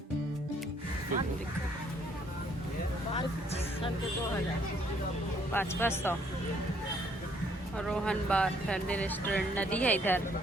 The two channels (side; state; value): both; normal; correlation 0.66